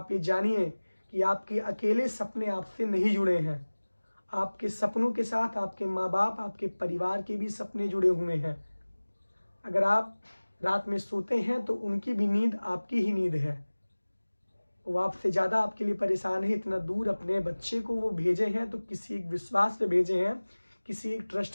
ये जानिए कि आपके अकेले सपने आपसे नहीं जुड़े हैं, आपके सपनों के साथ आपके माँ बाप, आपके परिवार के भी सपने जुड़े हुए हैं। अगर आप रात में सोते हैं तो उनकी भी नींद आपकी ही नींद है। वो आपसे ज़्यादा आपके लिए परेशान है। इतना दूर अपने बच्चे को वो भेजे हैं तो किसी एक विश्वास पे भेजे हैं, किसी एक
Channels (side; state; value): both; inverted; correlation -1.00